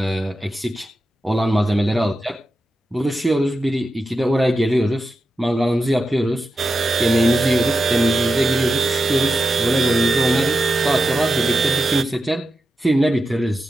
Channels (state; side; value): normal; both; correlation 0.90